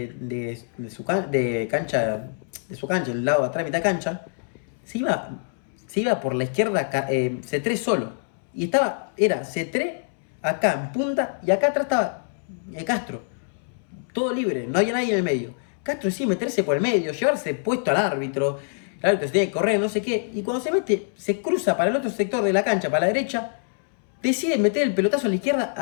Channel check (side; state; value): right; silent; 62 dB below the other